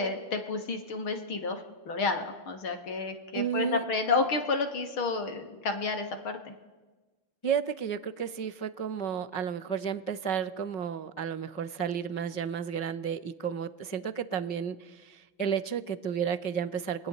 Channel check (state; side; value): late; right; 5.4 ms